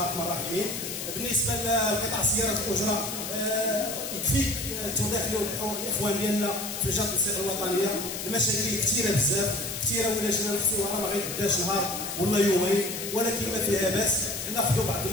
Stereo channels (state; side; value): noise; left; hiss, 6 dB below the sound